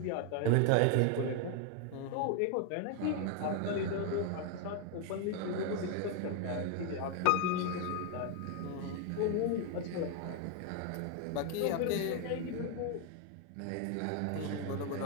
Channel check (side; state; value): both; different; correlation 0.01